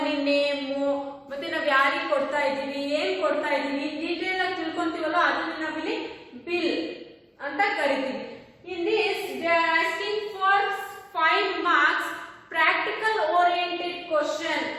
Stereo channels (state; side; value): identical; both; correlation 1.00